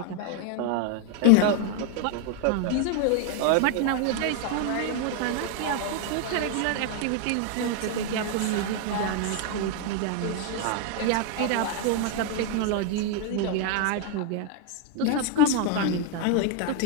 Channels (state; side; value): different; both; correlation 0.01